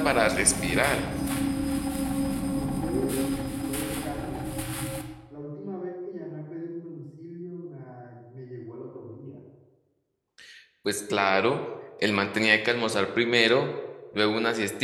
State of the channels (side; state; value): both; identical; correlation 1.00